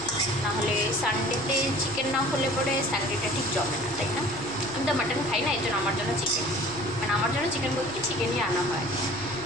নাহলে সানডেতে চিকেন না হলে পরে সানডেটা ঠিক জমে না, তাই না? আমি তো মাটন খাই না, এই জন্য আমার জন্য চিকেন, মানে আমার জন্য চিকেন বলতে কি চিকেনই আনা হয়।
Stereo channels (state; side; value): noise; right; hum, 14 dB below the sound